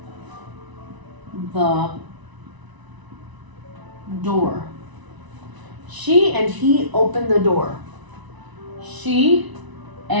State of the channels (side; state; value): left; late; 1.0 ms